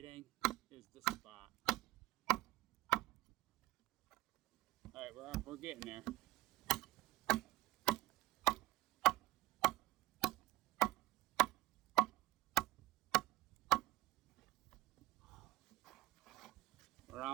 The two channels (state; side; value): quieter; left; 17.7 dB